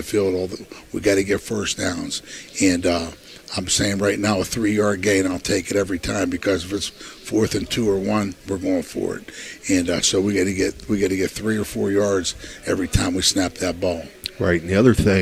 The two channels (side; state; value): both; identical; correlation 1.00